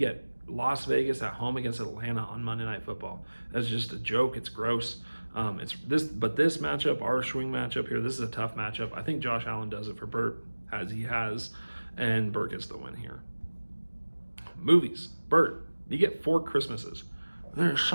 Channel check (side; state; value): both; inverted; correlation -1.00